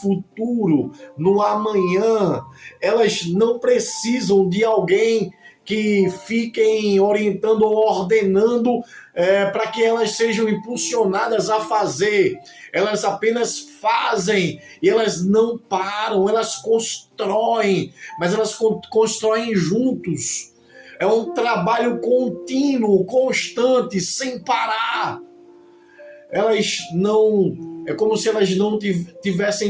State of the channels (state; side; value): identical; both; correlation 1.00